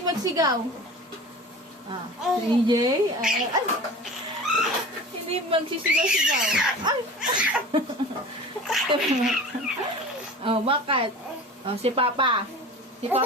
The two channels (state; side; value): normal; both; correlation 0.37